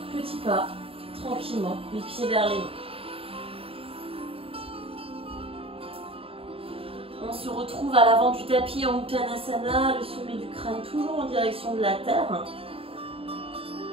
pas, tranquillement, les pieds vers les mains. On se retrouve à l'avant du tapis en Uttanasana, le sommet du crâne toujours en direction de la terre.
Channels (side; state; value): left; late; 0.27 ms